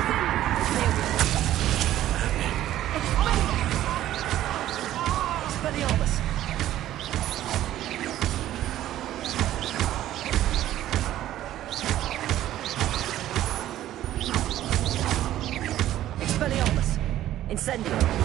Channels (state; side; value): quieter; left; 13.2 dB